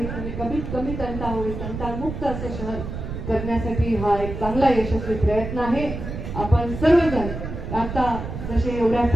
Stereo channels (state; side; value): noise; right; rumble, 7 dB below the sound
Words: आणि कमीत कमी तंटा होईल, तंटामुक्त असं शहर करण्यासाठी हा एक चांगला यशस्वी प्रयत्न आहे. आपण सर्वजण आता जसे एवढ्या